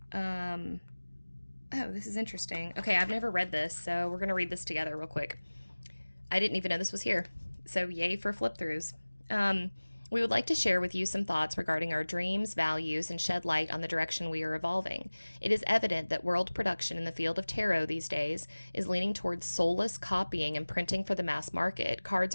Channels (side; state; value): both; inverted; correlation -1.00